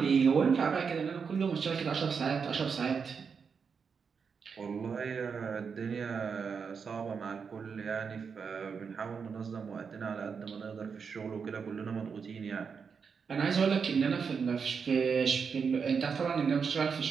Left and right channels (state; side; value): quieter; left; 6.0 dB